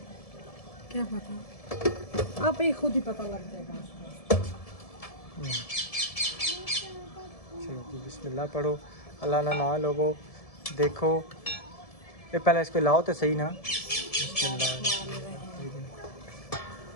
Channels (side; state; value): right; late; 1.7 ms